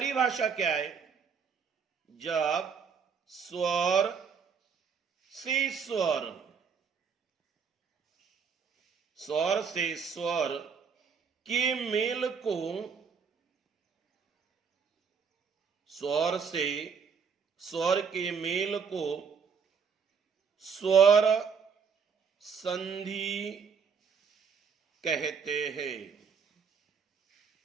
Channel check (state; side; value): quieter; left; 6.2 dB